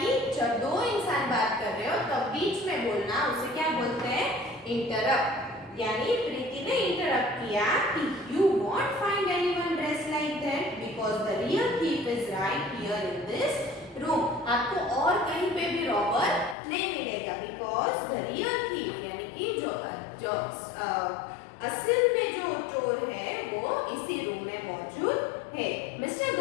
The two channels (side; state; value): right; drops out; at 16.6 s